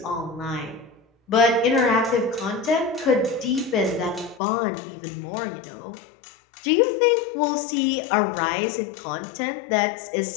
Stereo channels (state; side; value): drops out; right; at 4.4 s